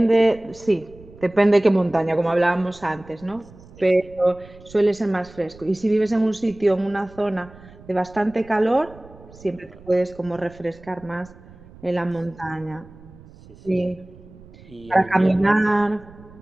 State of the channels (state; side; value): noise; right; rumble, 22 dB below the sound